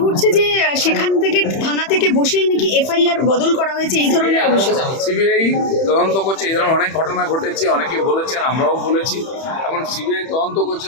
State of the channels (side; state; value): right; late; 31 ms